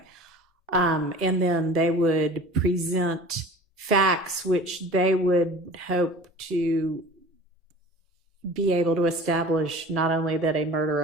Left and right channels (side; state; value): both; normal; correlation 0.41